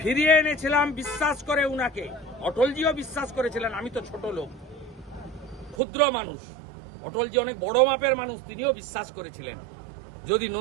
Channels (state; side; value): drops out; left; at 5.8 s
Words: এনেছিলাম বিশ্বাস করে উনাকে। অটলজিও বিশ্বাস করেছিলেন। আমি তো ছোট লোক, ক্ষুদ্র মানুষ, অটলজি অনেক বড় মাপের মানুষ, তিনিও বিশ্বাস করেছিলেন। যদি